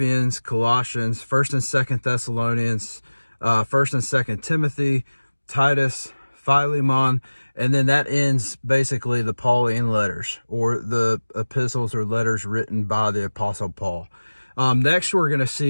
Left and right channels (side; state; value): both; inverted; correlation -1.00